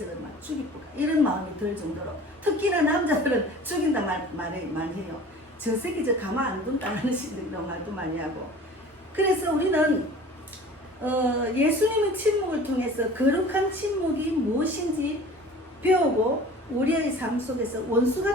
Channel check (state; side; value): normal; both; correlation 0.43